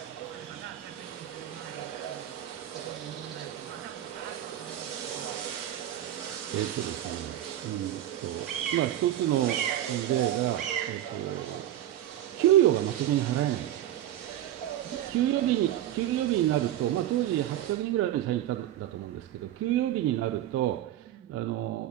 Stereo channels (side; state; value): left; quieter; 12.5 dB